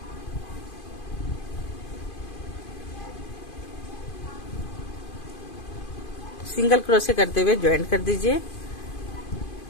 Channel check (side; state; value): right; late; 2.5 ms